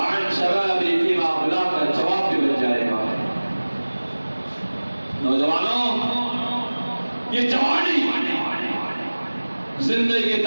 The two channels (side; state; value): both; inverted; correlation -1.00